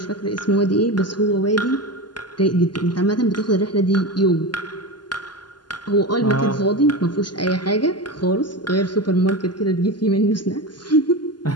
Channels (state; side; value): late; right; 0.71 ms